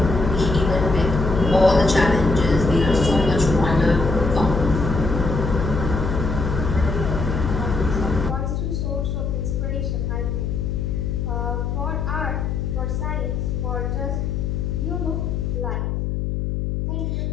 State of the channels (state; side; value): noise; left; hum, 1 dB below the sound